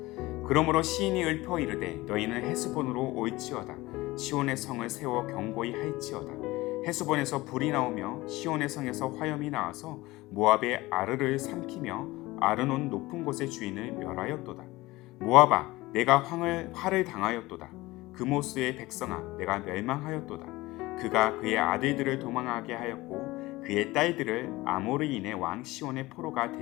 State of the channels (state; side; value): quieter; right; 19.8 dB